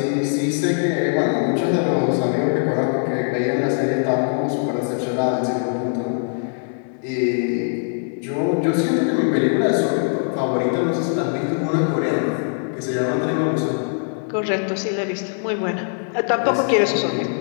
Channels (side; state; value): right; silent; digital silence